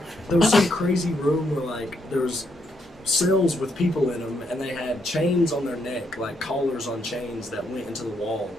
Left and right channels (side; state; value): both; normal; correlation 0.76